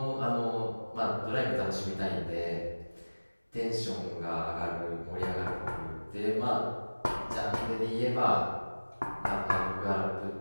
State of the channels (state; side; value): inverted; both; correlation -1.00